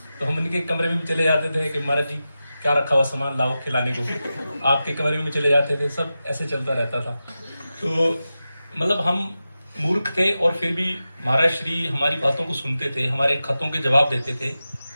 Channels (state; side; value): inverted; both; correlation -0.93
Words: तो हम उनके कमरे में भी चले जाते थे कि महाराज जी क्या रखा हुआ सामान लाओ खिलाने को, आपके कमरे में चले जाते थे, सब ऐसे चलता रहता था। तो मतलब हम मूर्ख थे और फिर भी महाराज श्री हमारी बातों को सुनते थे, हमारे खतों के जवाब देते थे